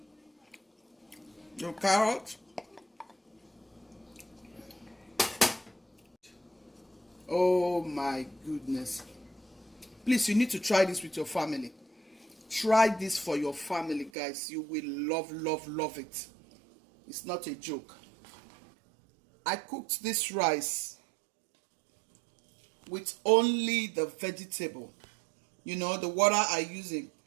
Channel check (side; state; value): left; drops out; at 14.1 s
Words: the carrot. Oh my goodness. Please, you need to try this with your family. Try this for your family, guys. You will love, love, love it. It's not a joke. I cooked this rice with only the vegetable. You know, the water I use